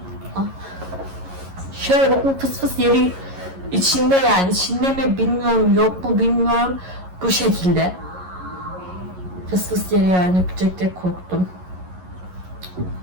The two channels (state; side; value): late; left; 11 ms